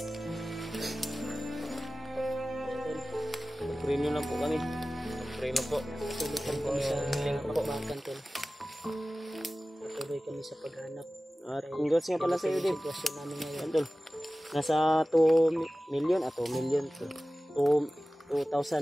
Ipag-pray nyo lang po kami. Pray na po. Patuloy kami sa pakbakan tol. Patuloy kami sa paghanap. At congrats nga pala sa iyo, Dave. Sitwasyon namin ngayon. Tol. Nasa 2 million, 2 million to.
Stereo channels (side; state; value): both; normal; correlation 0.96